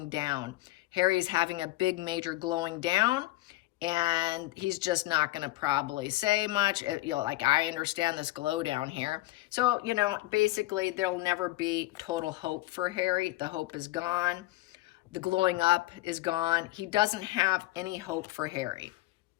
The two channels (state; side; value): quieter; right; 18.7 dB